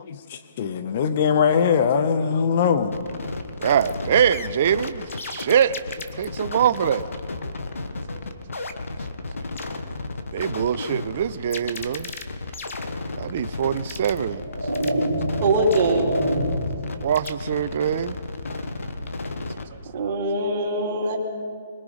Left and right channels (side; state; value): both; inverted; correlation -0.60